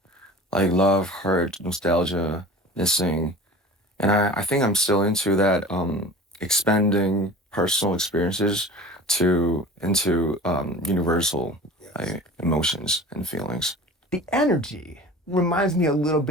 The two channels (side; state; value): both; normal; correlation 0.39